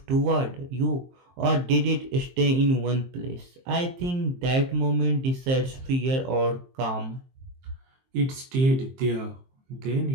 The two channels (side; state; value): left; late; 23 ms